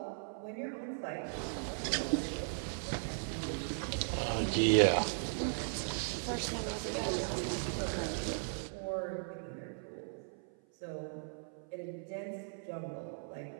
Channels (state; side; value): silent; left; 53 dB below the other